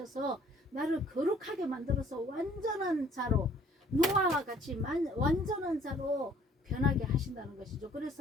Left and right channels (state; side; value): normal; both; correlation 0.58